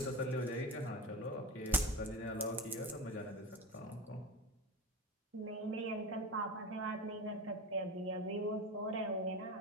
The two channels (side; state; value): both; normal; correlation 0.26